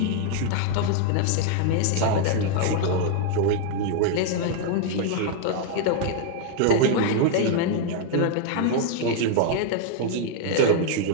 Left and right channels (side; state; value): both; different; correlation 0.00